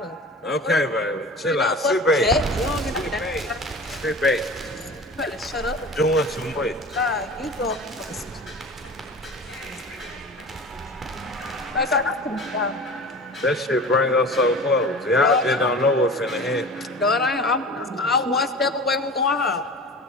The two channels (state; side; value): normal; both; correlation 0.36